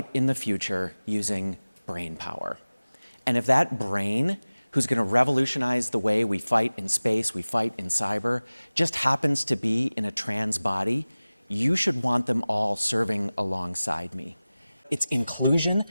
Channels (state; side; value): inverted; both; correlation -0.98